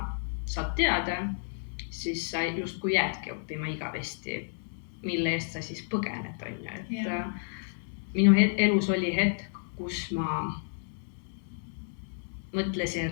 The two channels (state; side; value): silent; right; digital silence